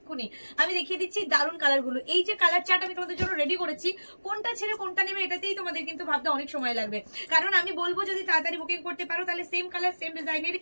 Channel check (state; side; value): inverted; both; correlation -1.00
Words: আমি দেখিয়ে দিচ্ছি দারুণ কালারগুলো। এই যে কালার চার্ট আমি তোমাদের জন্য রেডি করেছি, কোনটা ছেড়ে কোনটা নেবে এটাতেই তোমাদের কিন্তু ভাবতে অনেক সময় লাগবে, কারণ আমি বলবো যদি তাড়াতাড়ি বুকিং করতে পারো তাহলে সেম কালার সেম ডিজাইনের